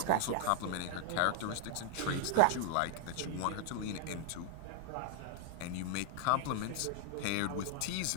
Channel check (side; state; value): both; different; correlation 0.00